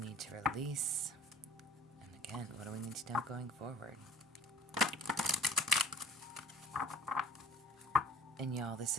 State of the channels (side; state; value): both; normal; correlation 0.47